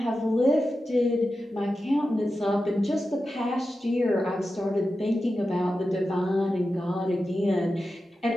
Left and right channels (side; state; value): both; normal; correlation 0.92